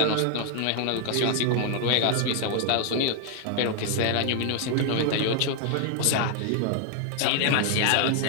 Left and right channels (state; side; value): different; both; correlation 0.00